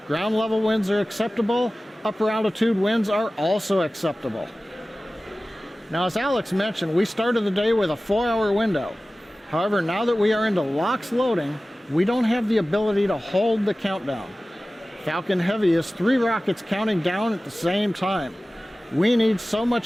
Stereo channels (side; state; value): both; normal; correlation 0.97